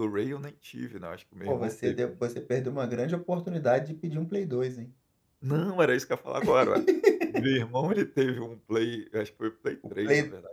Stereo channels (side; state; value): both; identical; correlation 1.00